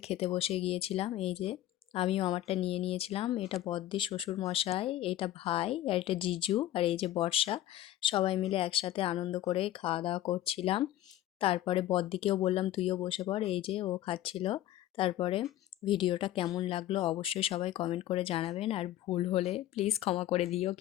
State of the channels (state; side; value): quieter; right; 13.6 dB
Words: খেতে বসে গিয়েছিলাম। এই যে আমিও আমারটা নিয়ে নিয়েছিলাম। এটা বড়দি শ্বশুর মশাই, এটা ভাই, আর এটা জিজু, আর এই যে বর্ষা। সবাই মিলে একসাথে আনন্দ করে খাওয়া দাওয়া করছিলাম। তারপরে বড়দিকেও বললাম তুইও বসে পড়, এই যে ও খাচ্ছিল। তারপরে ভিডিওটা কেমন লাগলো অবশ্যই সবাই কমেন্ট করে জানাবেন, আর ভুল হলে প্লিজ ক্ষমা করে দিও।